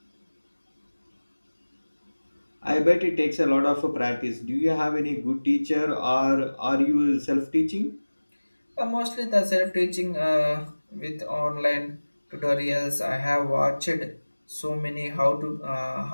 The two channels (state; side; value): inverted; both; correlation -1.00